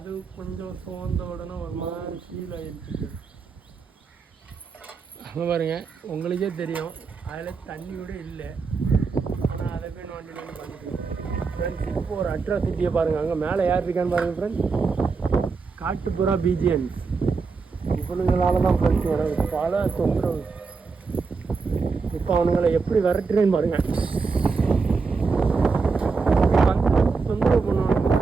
கொஞ்சம் சோர்ந்த உடனே ஒரு மாதிரி ஃபீல் ஆகிடுச்சு. அங்கே பாருங்க, உங்களுக்கே தெரியும் அதில் தண்ணி கூட இல்லை. ஆனால் அதை போய் நோண்டி பண்ணிட்டு ஃப்ரெண்ட்ஸ். இப்போ ஒரு அட்ராசிட்டியை பாருங்கள், அங்கே மேலே யார் இருக்கான்னு பாருங்கள் ஃப்ரெண்ட்ஸ். காட்டுப்புறா பீஜியன்ஸ். இவனுங்களால தான் ஃப்ரெண்ட்ஸ் எனக்கு பல தொந்தரவு. இப்போ அவனுங்களை எப்படி விரட்டுறேன்னு பாருங்கள். தொந்தரவு பண்ணுவாங்க.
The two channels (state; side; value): quieter; left; 4.7 dB